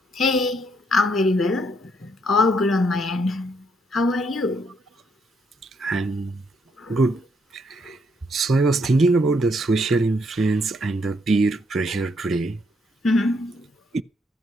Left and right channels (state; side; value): normal; both; correlation 0.73